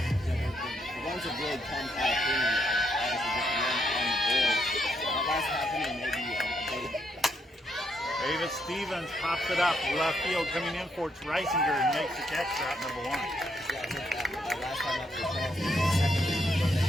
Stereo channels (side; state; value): both; normal; correlation 0.76